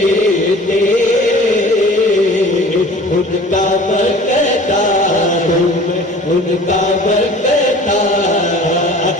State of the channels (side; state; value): both; normal; correlation 0.45